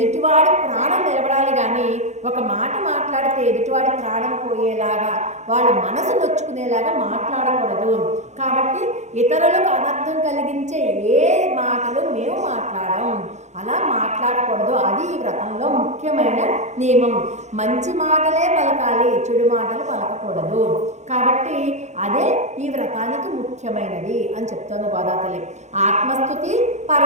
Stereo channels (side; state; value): left; late; 0.33 ms